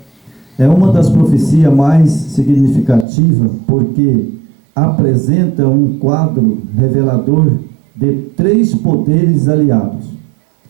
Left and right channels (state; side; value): drops out; left; at 3.1 s